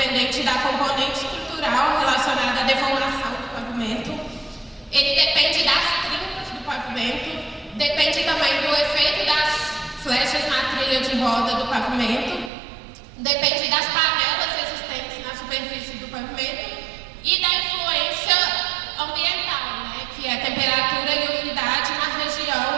da componente estrutural relacionada à deformação do pavimento. Ele depende das trincas do pavimento, depende também do efeito das flechas na trilha de roda do pavimento, depende das panelas existentes na superfície do pavimento e da influência ambiental, né, que é a temperatura e umidade na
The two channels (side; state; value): left; drops out; at 12.5 s